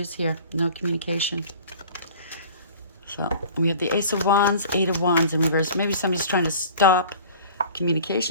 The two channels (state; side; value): inverted; both; correlation -0.44